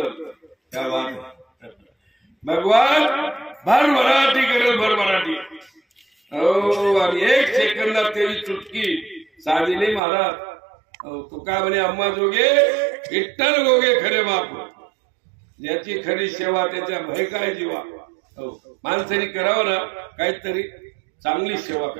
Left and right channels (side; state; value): left; drops out; at 10.0 s